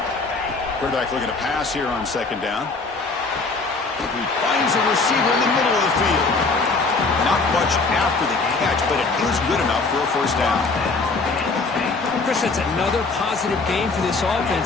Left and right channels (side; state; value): right; quieter; 3.9 dB